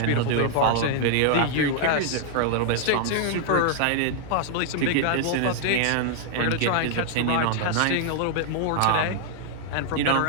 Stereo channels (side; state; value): both; different; correlation 0.00